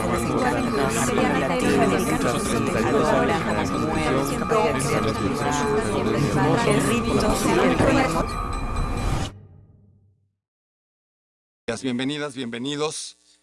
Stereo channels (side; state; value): both; identical; correlation 1.00